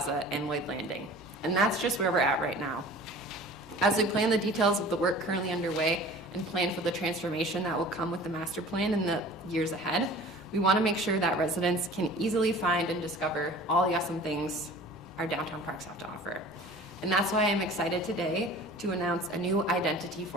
and Lloyd Landing. And that's just where we're at right now. As we plan the details of the work currently underway and plan for the transformation that will come with the master plan in the years ahead, we want to make sure that residents can easily find and discover all the awesome things our downtown parks have to offer. And that's why I'm excited today to announce a new identity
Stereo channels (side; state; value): right; noise; rumble, 30 dB below the sound